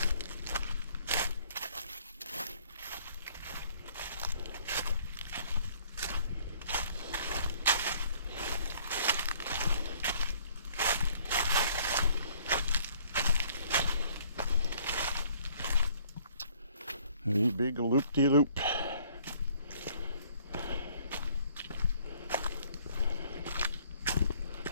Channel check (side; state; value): both; inverted; correlation -0.59